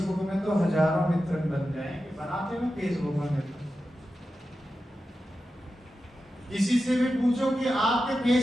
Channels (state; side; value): normal; both; correlation 0.91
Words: में तो हजारों मित्र बन जाएंगे, बनाते हैं फेसबुक में मित्र। किसी से भी पूछो कि आपके